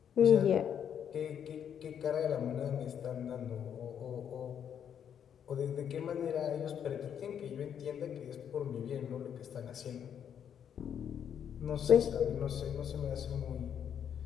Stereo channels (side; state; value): right; quieter; 8.6 dB